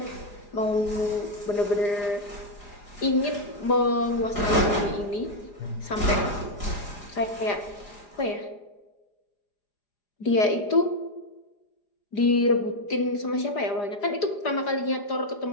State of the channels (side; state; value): right; late; 4.9 ms